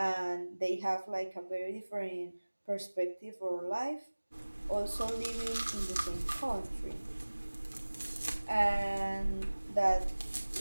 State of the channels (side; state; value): both; inverted; correlation -1.00